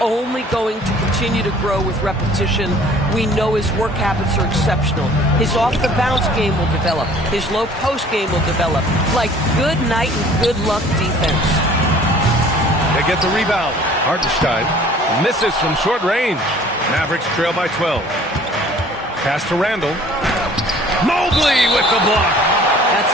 only going to continue to grow with repetition. We know his work habits are exceptional. His off-the-bounce game will develop. His low-post game will develop. Like good night and good luck defense. They get the rebound. Hartenstein misses from short range. Mavericks trail by 12. Pass to Randall. Mobley with the block.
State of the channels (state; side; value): normal; both; correlation 0.52